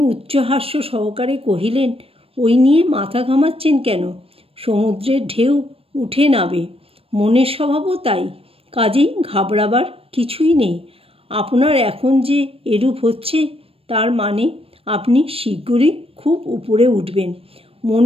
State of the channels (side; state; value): left; late; 0.28 ms